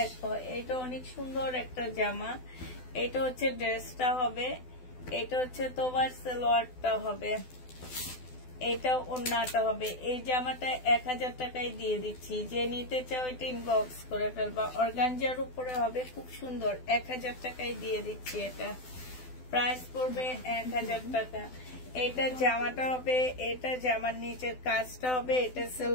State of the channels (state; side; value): late; right; 12 ms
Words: এটা অনেক সুন্দর একটা জামা। এটা হচ্ছে ড্রেসটা হবে, এটা হচ্ছে তোমার সালোয়ারটা হবে, এটা ওড়নাটা হবে। এই জামাটা 1000 টাকায় দিয়ে দিচ্ছি। যে নিতে চাও এটা ইনবক্স করে ফেলবা। অর্গানজার উপরে হবে, খুব সুন্দর, 1000 টাকায় দিয়ে দিচ্ছি। এটা প্রাইস পড়বে 1000 টাকা। এটা জামাটা হবে, এটা জামার নিচের কাজটা হবে, এটা